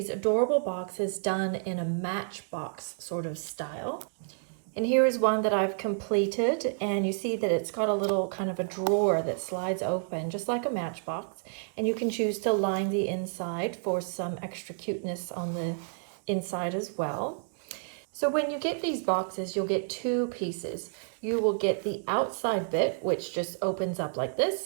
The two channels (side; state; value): left; silent; digital silence